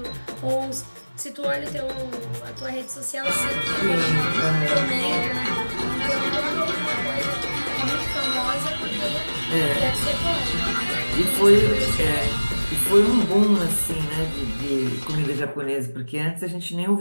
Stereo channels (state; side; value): inverted; both; correlation -1.00